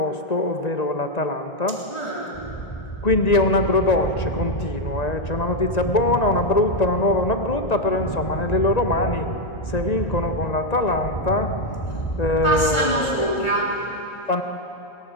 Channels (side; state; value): right; late; 1.4 ms